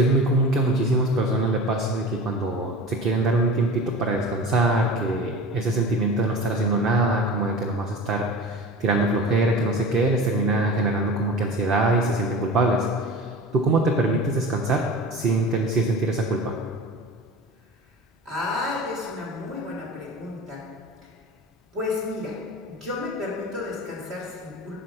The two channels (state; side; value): normal; both; correlation 0.35